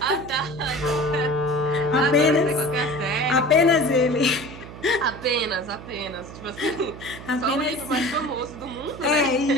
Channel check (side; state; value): right; noise; hum, 14 dB below the sound